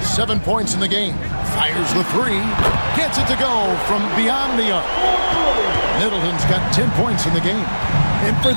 7 points in the game. Fires the 3. Gets it to go from beyond the arc. Middleton's got 10 points in the game. And for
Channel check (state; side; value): inverted; both; correlation -1.00